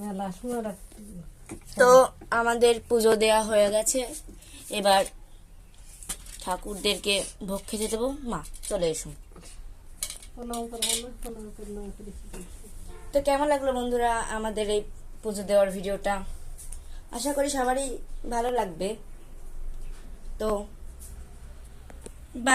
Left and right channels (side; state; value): both; identical; correlation 1.00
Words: সময় তো আমাদের পুজো দেয়া হয়ে গেছে, এবার ঠাকুরদেরকে ভোগ খেতে দেবো। মা চলে এসো। প্রণাম করবো না, প্রণাম করলাম করে তো কেমন লাগলো বন্ধুরা আমাদের এই পুজো দেওয়ার ভিডিওটা? আশা করি সবারই ভালো লাগবে। তো